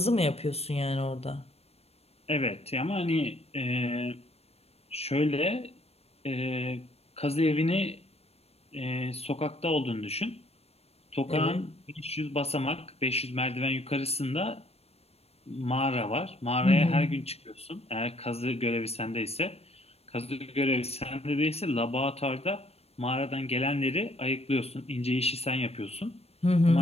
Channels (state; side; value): late; right; 0.29 ms